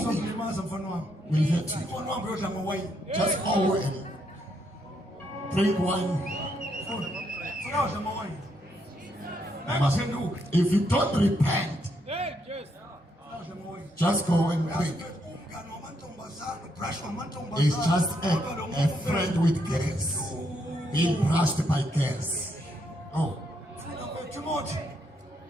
Uzokulimaza mfana wami. will hurt you. Mfana wami uyodla ngowayini. Just go and drink wine. Funa udla ngowayini. Ngaphenduka. If you don't repent, Udla ngowayini. just go and drink. Umngane wamantombazane, brush wamantombazane. It's just a friend with girls. Being brushed by girls. Oh, Timothy.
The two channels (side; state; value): both; normal; correlation 0.76